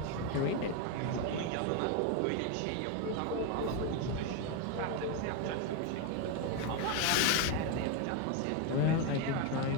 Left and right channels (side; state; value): both; different; correlation 0.02